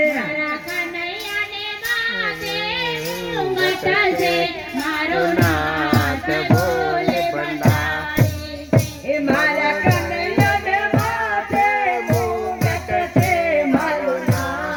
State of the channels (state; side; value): identical; both; correlation 1.00